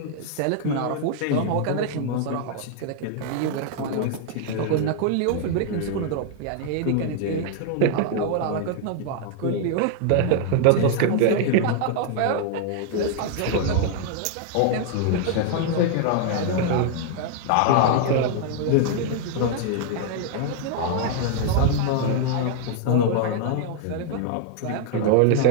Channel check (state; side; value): different; both; correlation 0.00